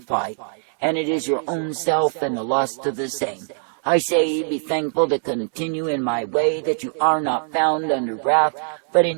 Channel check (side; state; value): left; silent; digital silence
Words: fight, and it is your own self and the lust of the same. I say, be thankful to continue in my way, that you are not found under wrath, but